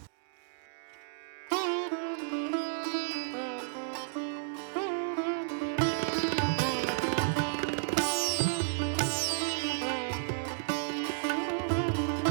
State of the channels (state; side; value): silent; left; digital silence